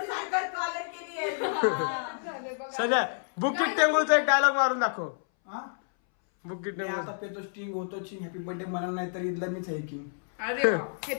साखर कॉलर केली आहे। सध्या बुकिट टेंगुलचा एक डायलॉग मारून दाखव, हा बुकिट मी टेंगुल। आता पेतो स्टिंग होतो चिंग, हॅपी बर्थडे म्हणाल नाही तर इथला मीच आहे की, अरे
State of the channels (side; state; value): right; silent; 58 dB below the other